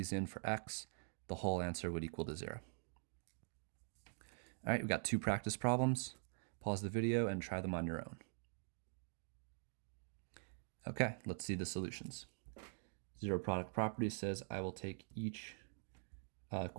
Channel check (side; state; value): left; silent; digital silence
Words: in for x, the whole answer would equal to 0. All right, we've got 2 practice problems. Pause the video and try them on your own. Okay, let's see the solutions. Zero product property says I will take each